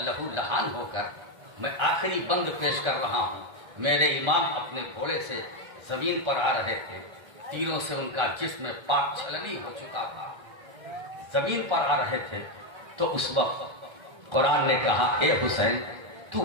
لہو لہان ہو کر میں آخری بند پیش کر رہا ہوں، میرے امام اپنے گھوڑے سے زمین پر آ رہے تھے، تیروں سے ان کا جسم پاک چھلنی ہو چکا تھا، زمین پر آ رہے تھے، تو اس وقت قرآن نے کہا اے حسین تو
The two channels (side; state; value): left; late; 1.3 ms